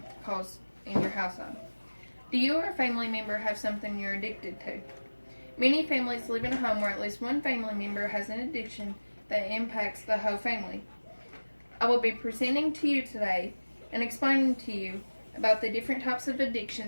cause in your household. Do you or a family member have something you're addicted to? Many families live in a home where at least one family member has an addiction that impacts the whole family. I will be presenting to you today and explaining to you about the different types of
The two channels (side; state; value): both; inverted; correlation -1.00